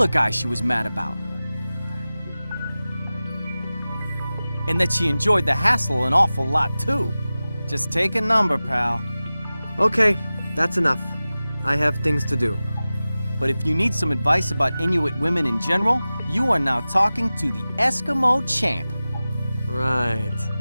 guy she was mad about. And that she enjoyed the hassle an awful lot too. Just take a number, pal. Okay, that's enough. I have things to do. But if you need some advice about Inuit women in general, you are now talking to the Eskimo champ. Right.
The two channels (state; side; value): inverted; both; correlation -0.97